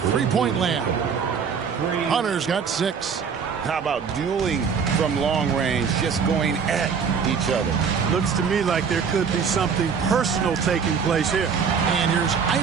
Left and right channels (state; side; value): quieter; left; 6.3 dB